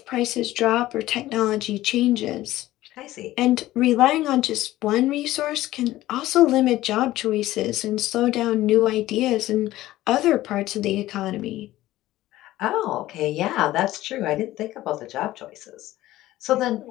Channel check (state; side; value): quieter; right; 15.8 dB